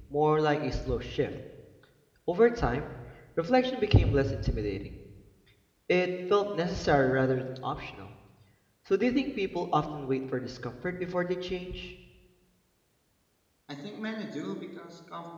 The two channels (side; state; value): both; identical; correlation 1.00